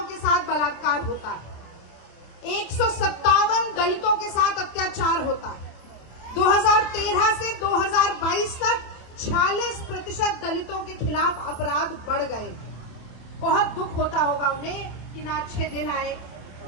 के साथ बलात्कार होता है, 157 दलितों के साथ अत्याचार होता है। 2013 से 2022 तक 46% दलितों के खिलाफ अपराध बढ़ गए। बहुत दुख होता होगा उन्हें कि ना अच्छे दिन आए,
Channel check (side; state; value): right; late; 27 ms